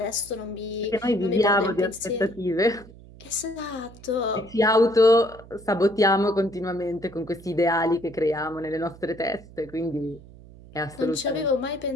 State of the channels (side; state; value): right; noise; hum, 20 dB below the sound